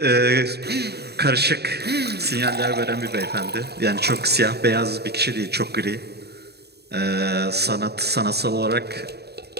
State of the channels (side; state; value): left; late; 0.47 ms